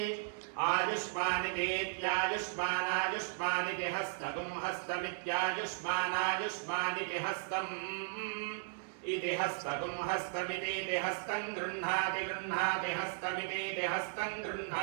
आयुष्मानितेत्यायुष्मानायुष्मानिति हस्तगुं हस्तमित्यायुष्मानायुष्मानिति हस्तम् इति हस्तगुं हस्तमितीति हस्तं गृह्णाति गृह्णाति हस्तमितीति हस्तं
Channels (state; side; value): silent; left; 54 dB below the other